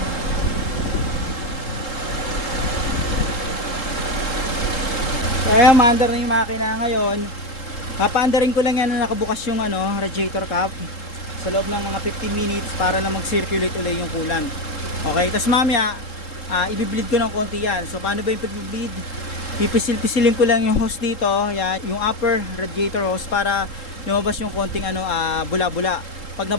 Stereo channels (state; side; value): late; right; 3.7 ms